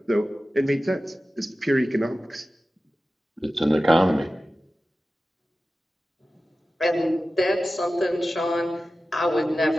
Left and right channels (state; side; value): normal; both; correlation 0.95